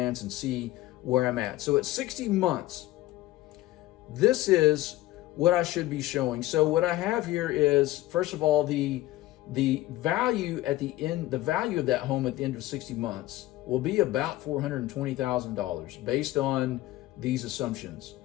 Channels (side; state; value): right; quieter; 16.3 dB